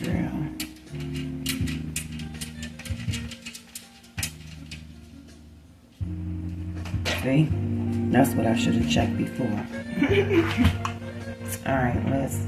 drill. See? That's what I should have checked before. Alright, let's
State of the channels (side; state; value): both; identical; correlation 1.00